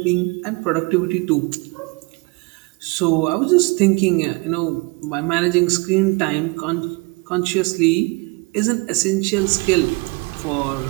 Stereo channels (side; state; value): left; quieter; 28.6 dB